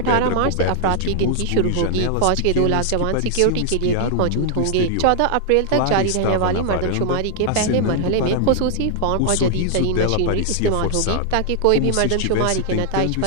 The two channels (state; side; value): different; both; correlation 0.00